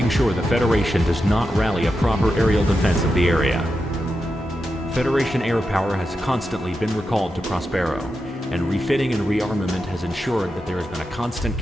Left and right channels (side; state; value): both; normal; correlation 0.88